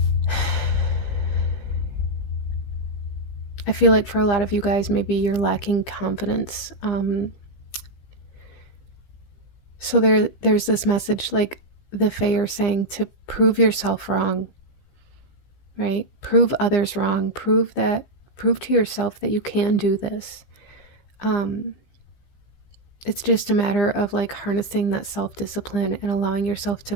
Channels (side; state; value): right; late; 15 ms